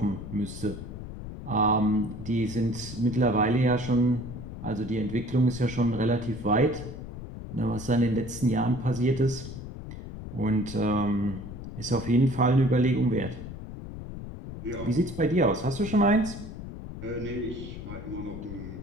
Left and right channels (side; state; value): left; noise; rumble, 10 dB below the sound